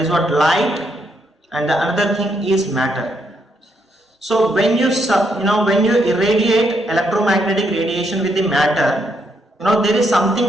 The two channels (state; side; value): normal; both; correlation 0.76